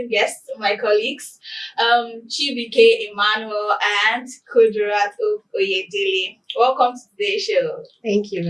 guests, my colleagues, Chibuike, Emmanuel, and Kudirat Oyedele. Welcome to today's show. Thank you.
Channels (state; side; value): identical; both; correlation 1.00